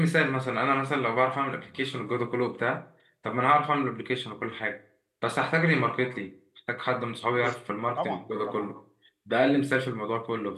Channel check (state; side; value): identical; both; correlation 1.00